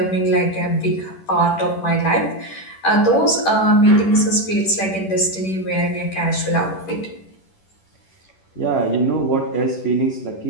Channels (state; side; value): late; right; 10 ms